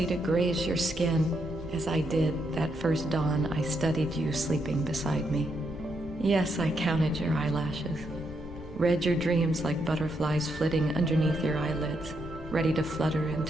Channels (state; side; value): normal; both; correlation 0.79